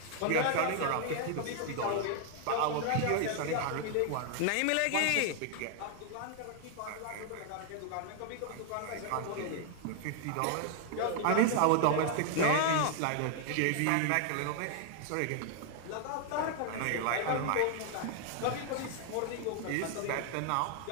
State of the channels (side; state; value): both; different; correlation 0.00